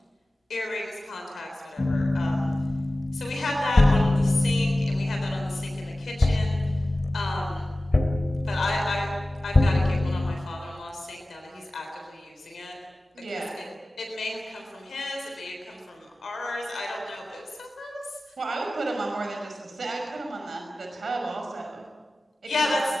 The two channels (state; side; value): normal; both; correlation 0.96